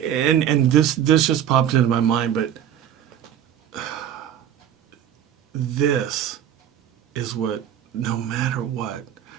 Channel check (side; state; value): left; quieter; 10.1 dB